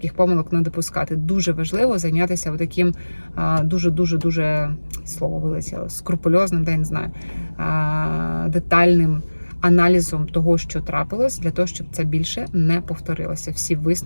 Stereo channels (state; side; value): inverted; both; correlation -1.00